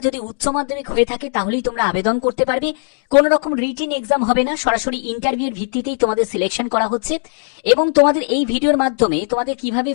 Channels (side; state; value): right; silent; digital silence